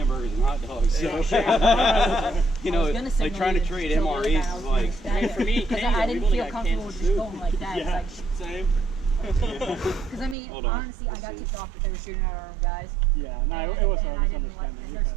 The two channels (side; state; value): left; drops out; at 10.4 s